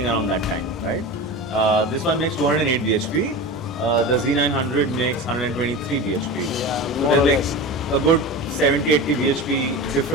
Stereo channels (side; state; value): both; normal; correlation 0.29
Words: around that time, right? This one makes 208 bhp. The Z900 makes 123 bhp. So there's like a good 70-80 bhp